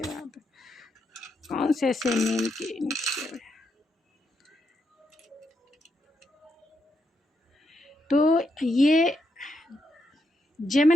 कौन से ऐसे नेम के इनिशियल है। तो ये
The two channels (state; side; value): normal; both; correlation 0.80